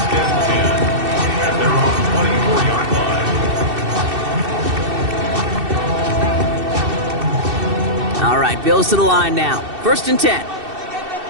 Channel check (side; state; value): left; late; 2.7 ms